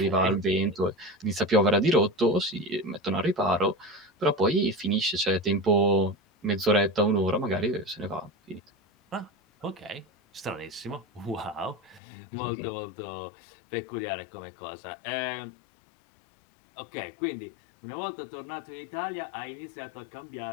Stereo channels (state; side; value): drops out; right; at 12.0 s